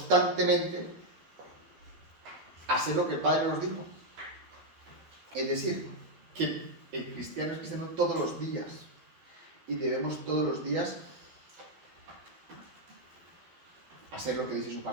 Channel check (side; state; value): left; late; 12 ms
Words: hacer lo que el Padre nos dijo. Es decir, que el cristiano es cristiano todos los días y debemos todos los días hacer lo que dice su